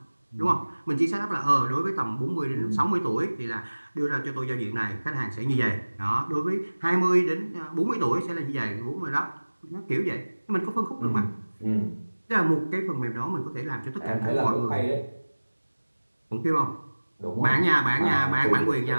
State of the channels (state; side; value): inverted; both; correlation -1.00